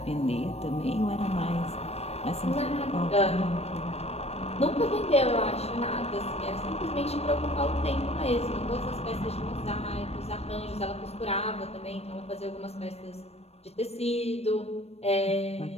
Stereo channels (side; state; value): right; late; 0.30 ms